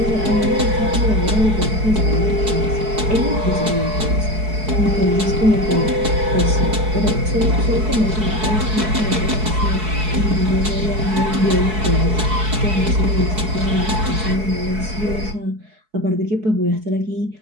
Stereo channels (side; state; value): left; late; 4.7 ms